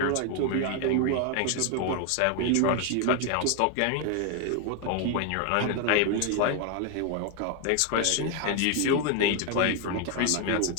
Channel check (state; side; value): different; both; correlation 0.01